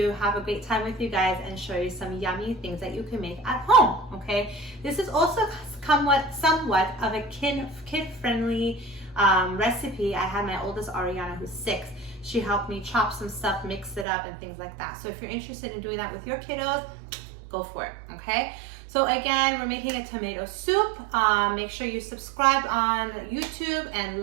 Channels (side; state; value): left; drops out; at 14.1 s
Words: have a great time with you guys and show you some yummy things that you can make at home, okay? This is also somewhat of a kid-friendly recipe. I had my oldest Ariana, who's 6. She helped me chop some stuff, mix it up, and things like that. So if you're interested in doing that with your kiddos, go for it, okay? So again, we're making a tomato soup. Make sure you subscribe on YouTube